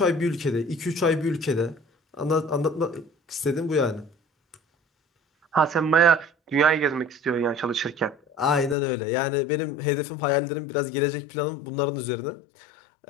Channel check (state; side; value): drops out; right; at 8.8 s